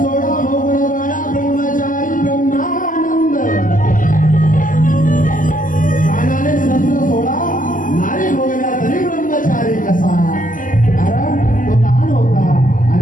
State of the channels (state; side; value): late; right; 0.38 ms